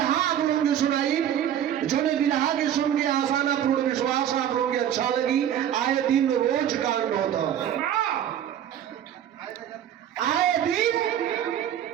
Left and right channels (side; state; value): left; quieter; 10.3 dB